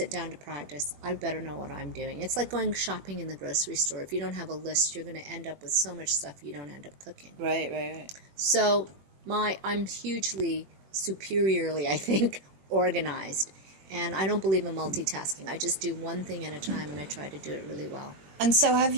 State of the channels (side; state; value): left; late; 21 ms